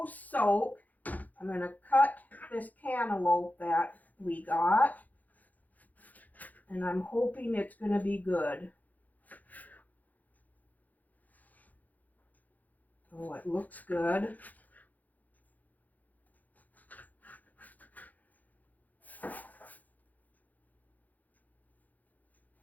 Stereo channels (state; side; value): late; right; 0.081 ms